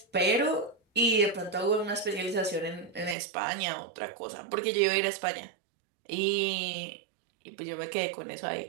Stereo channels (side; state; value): left; drops out; at 3.2 s